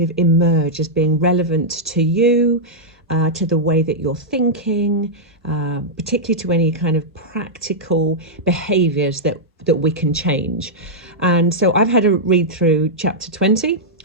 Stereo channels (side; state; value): both; normal; correlation -0.08